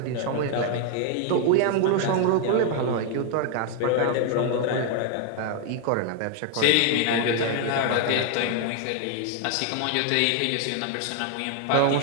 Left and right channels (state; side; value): different; both; correlation 0.00